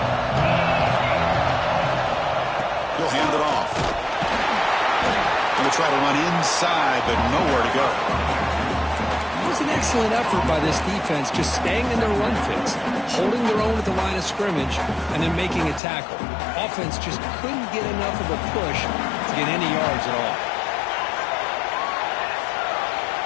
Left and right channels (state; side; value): drops out; right; at 15.8 s